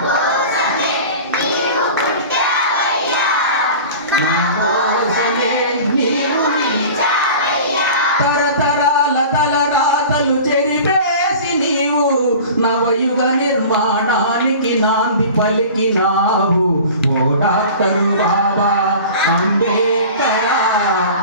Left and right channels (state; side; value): inverted; both; correlation -0.39